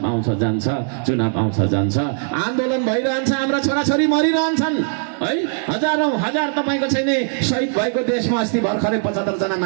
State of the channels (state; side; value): silent; left; 59 dB below the other